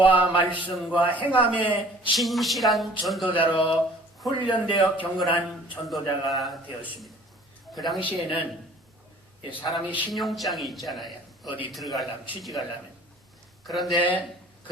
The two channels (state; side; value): normal; both; correlation 0.51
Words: 말씀과 행함의 진실한 전도자로 훈련되어 경건한 전도자가 되었습니다. 그 당시에는 사람이 신용장이 있잖아요. 어디 들어가려면, 취직하려면. 그런데